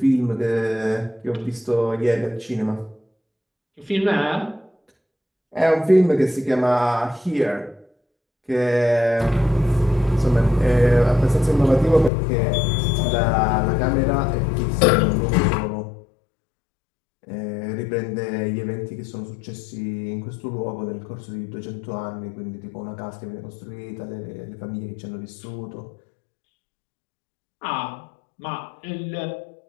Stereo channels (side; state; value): right; drops out; at 12.1 s